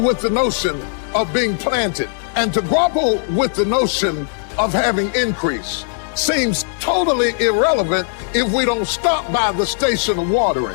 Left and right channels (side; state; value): right; silent; digital silence